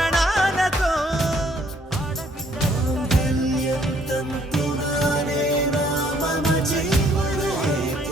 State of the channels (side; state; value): both; normal; correlation 0.64